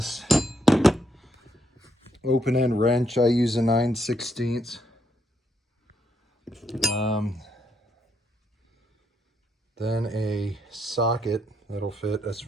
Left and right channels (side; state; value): both; normal; correlation 0.76